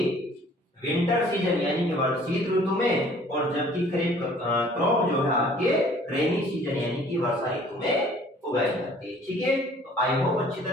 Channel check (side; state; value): both; normal; correlation 0.54